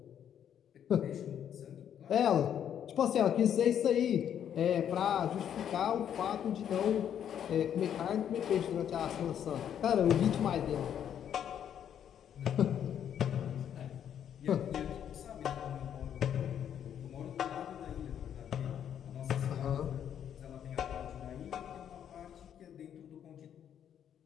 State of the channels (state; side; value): quieter; right; 9.3 dB